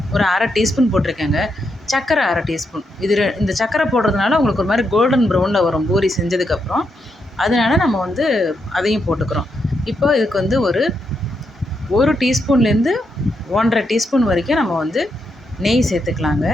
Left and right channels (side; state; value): both; normal; correlation 0.81